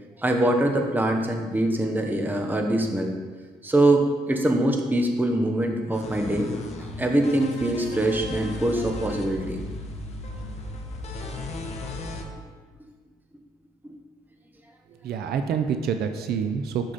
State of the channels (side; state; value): both; normal; correlation 0.79